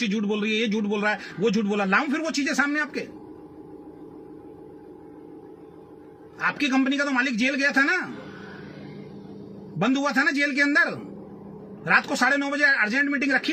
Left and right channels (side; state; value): both; identical; correlation 1.00